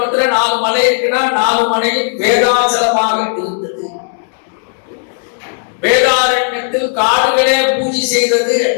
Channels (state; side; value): silent; right; digital silence